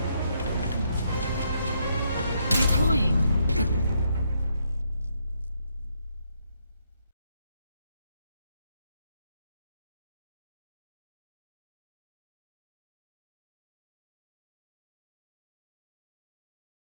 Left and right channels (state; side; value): inverted; both; correlation -0.75